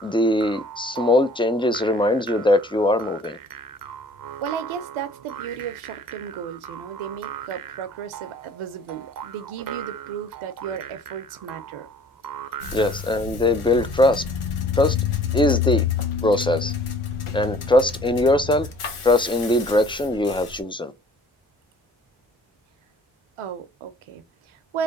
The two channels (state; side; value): normal; both; correlation 0.53